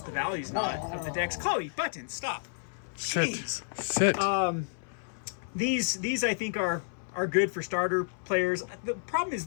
value's not of the decks. Chloe, buttons, stop. Sit. These I think are good for starter players. The problem is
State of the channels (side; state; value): right; silent; 57 dB below the other